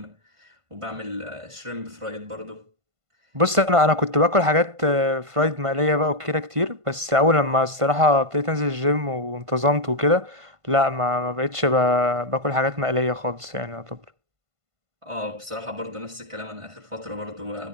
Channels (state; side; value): late; left; 1.5 ms